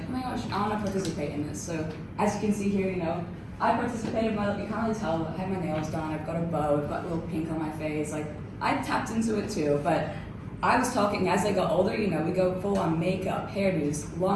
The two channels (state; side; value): identical; both; correlation 1.00